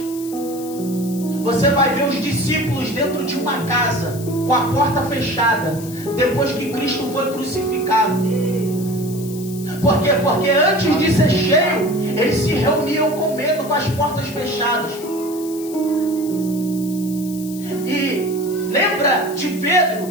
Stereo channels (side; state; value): left; noise; hiss, 15 dB below the sound